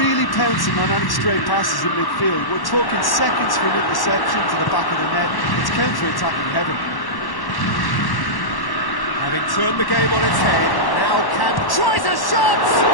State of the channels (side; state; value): right; late; 1.1 ms